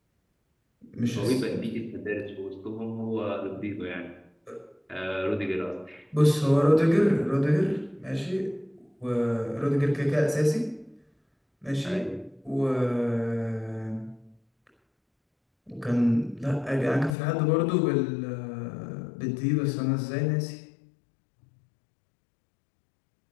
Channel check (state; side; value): drops out; right; at 17.2 s